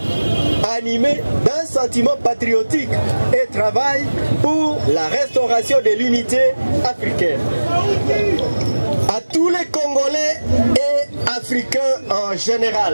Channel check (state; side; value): inverted; both; correlation -1.00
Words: animés d'un sentiment patriotique et travaillent pour la restauration de l'unité africaine. À tous les Congolais et Africains en